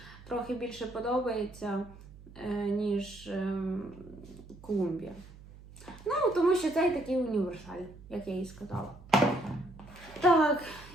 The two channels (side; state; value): right; noise; hum, 19 dB below the sound